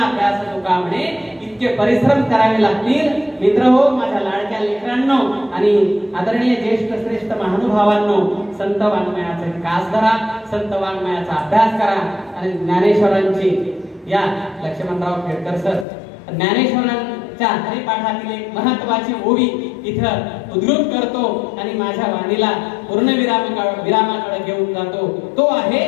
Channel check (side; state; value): right; drops out; at 15.9 s